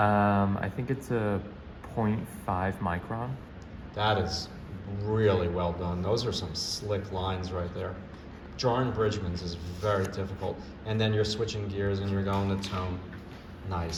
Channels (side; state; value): both; identical; correlation 1.00